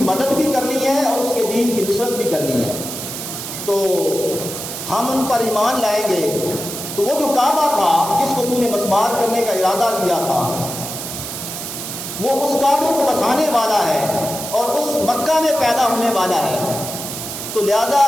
مدد بھی کرنی ہے اور اس کے دین کی نصرت بھی کرنی ہے، تو ہم ان پر ایمان لائیں گے۔ تو وہ جو کعبہ تھا جس کو تو نے مسمار کرنے کا ارادہ کیا تھا، وہ اس کعبے کو بسانے والا ہے اور اس مکہ میں پیدا ہونے والا ہے، تو لہذا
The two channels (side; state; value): right; noise; hiss, 7 dB below the sound